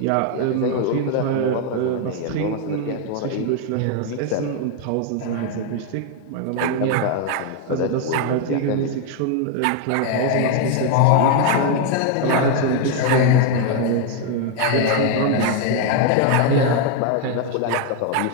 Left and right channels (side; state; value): both; different; correlation 0.01